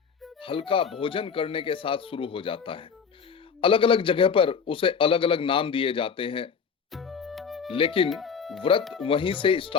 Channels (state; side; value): quieter; right; 6.3 dB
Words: हल्का भोजन करने के साथ शुरू हो जाता है। अलग अलग जगह पर उसे अलग अलग नाम दिए जाते हैं, लेकिन व्रत वहीं से